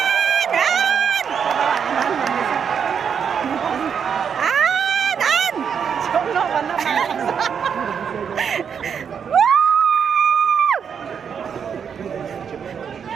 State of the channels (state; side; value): quieter; left; 7.2 dB